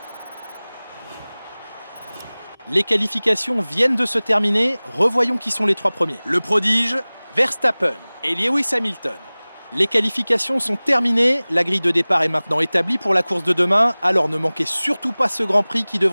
Les qualifications viennent de se terminer, revoyons qui sont les 3 premiers. Le prodige, Verstappen et Lewis Hamilton. Les qualifications sont terminées, la grille de départ est maintenant établie pour la course de demain, alors ne manquez surtout pas ce Grand Prix qui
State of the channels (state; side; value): inverted; both; correlation -1.00